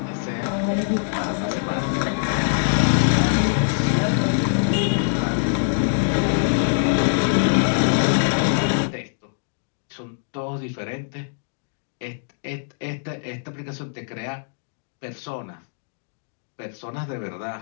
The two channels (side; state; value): right; silent; digital silence